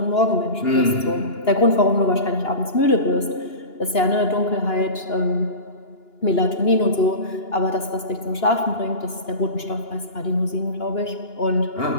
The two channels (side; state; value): right; late; 2.9 ms